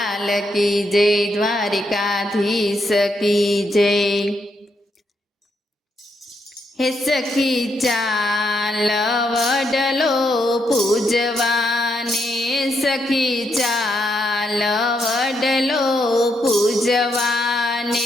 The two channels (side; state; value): both; normal; correlation 0.78